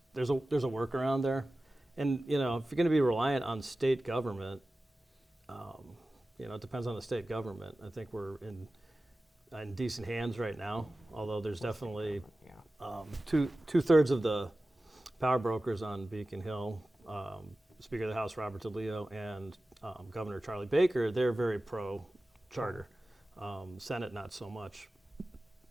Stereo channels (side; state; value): both; normal; correlation 0.95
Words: a workaround there. And if you're going to be reliant on state government, it depends on the state government. I think we're in decent hands right now, although there's definitely two-thirds of the power brokers on Beacon Hill Speaker of the House Robert DeLeo and Governor Charlie Baker, they're very pro-charter. Senate, not so much.